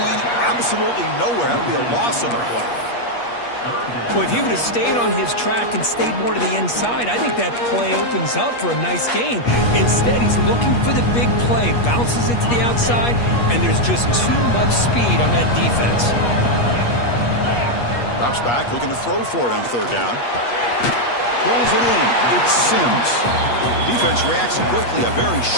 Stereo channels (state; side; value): late; right; 8.4 ms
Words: absolutely nowhere. That would be a loss of the play. Well, if he would have stayed on his track and stayed more to the inside, I think that play opens up for a nice gain. Instead, he's looking for the big play, bounces it to the outside, and there's just too much speed on that defense. Drops back, looking to throw for it on 3rd down. Pulls it in. It's Sims. Defense reacts quickly. A very